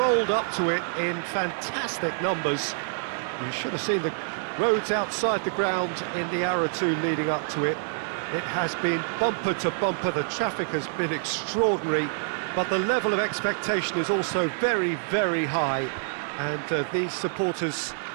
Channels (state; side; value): silent; left; 55 dB below the other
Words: up to it in fantastic numbers. You should have seen the roads outside the ground in the hour or two leading up to it. It has been bumper to bumper, the traffic has been extraordinary, but the level of expectation is also very, very high. And these supporters